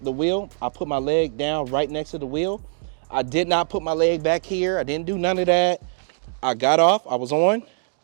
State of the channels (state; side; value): silent; left; digital silence